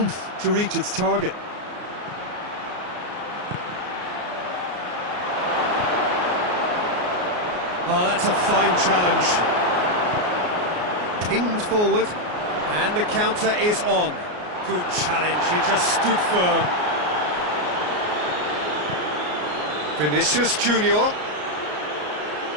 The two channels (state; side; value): late; left; 33 ms